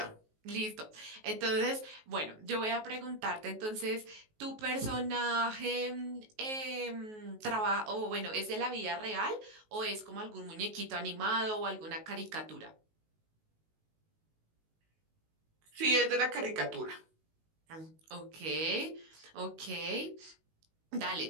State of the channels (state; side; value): late; left; 19 ms